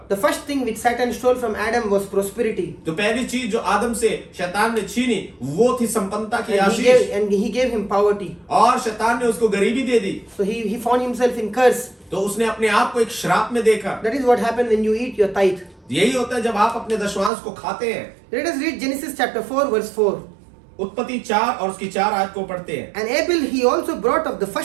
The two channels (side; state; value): left; drops out; at 17.3 s